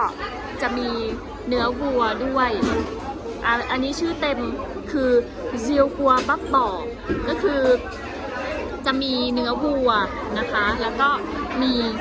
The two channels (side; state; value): both; identical; correlation 1.00